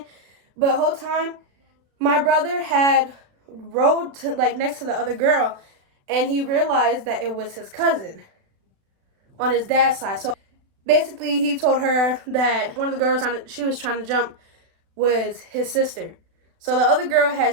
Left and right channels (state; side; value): late; left; 36 ms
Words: But the whole time, my brother had rode to, like, next to the other girl, and he realized that it was his cousin on his dad's side. So basically, he told her that one of the girls she was trying to jump was his sister. So the other girl